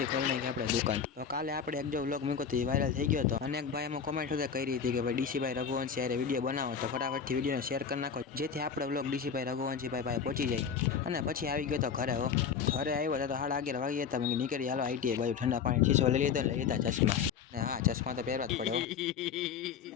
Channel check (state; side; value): quieter; right; 6.9 dB